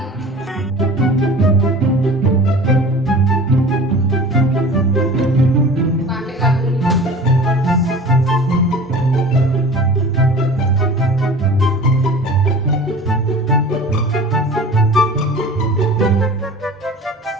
Pakai lagu ini.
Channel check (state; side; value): normal; both; correlation 0.40